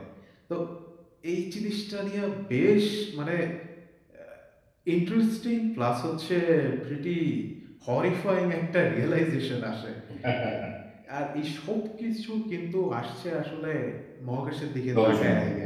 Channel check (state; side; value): identical; both; correlation 1.00